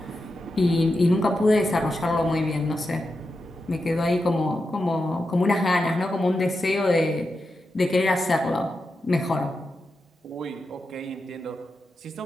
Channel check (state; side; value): normal; both; correlation 0.89